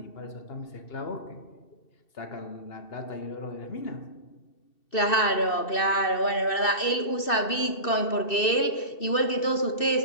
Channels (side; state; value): right; late; 2.6 ms